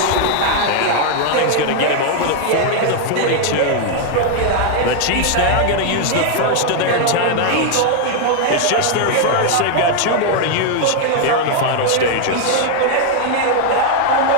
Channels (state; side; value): different; both; correlation 0.00